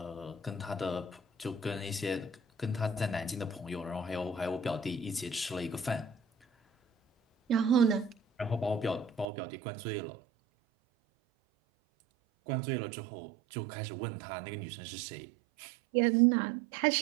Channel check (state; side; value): drops out; left; at 9.2 s